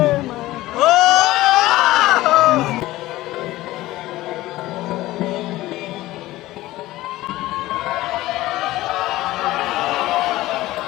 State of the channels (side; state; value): right; quieter; 17.0 dB